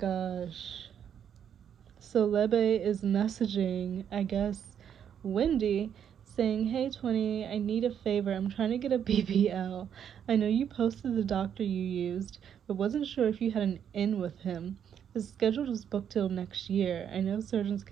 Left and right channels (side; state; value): left; quieter; 8.7 dB